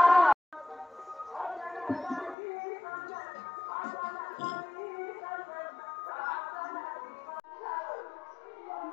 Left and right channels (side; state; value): right; drops out; at 2.4 s